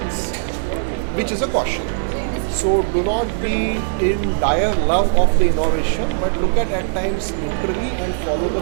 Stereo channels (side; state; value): left; silent; digital silence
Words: which is a caution. So do not be in dire love of the innovation, but look at times neutrally and follow the